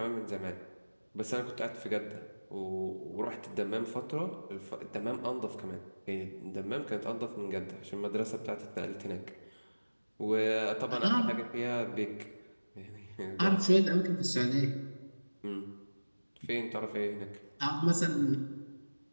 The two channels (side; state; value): both; inverted; correlation -1.00